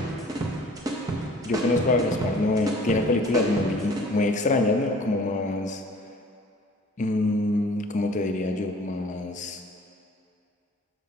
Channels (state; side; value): normal; both; correlation 0.50